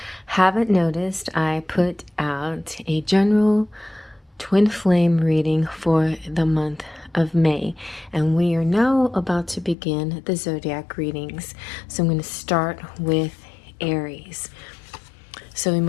haven't noticed, I put out a general twin flame reading for the month of May, and we are now about to begin the zodiac readings. So I'm going to start with Aries. So we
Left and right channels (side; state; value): right; drops out; at 9.8 s